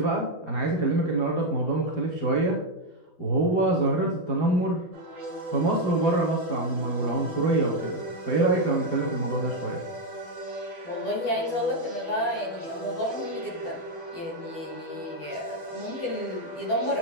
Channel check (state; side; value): late; right; 12 ms